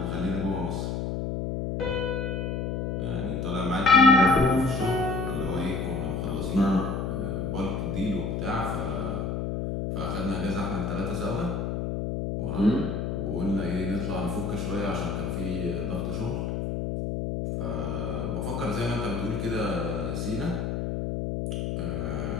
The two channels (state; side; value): noise; left; hum, 2 dB below the sound